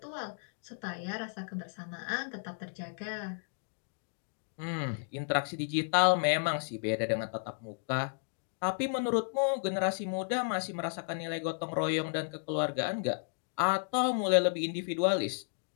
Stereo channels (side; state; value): right; silent; digital silence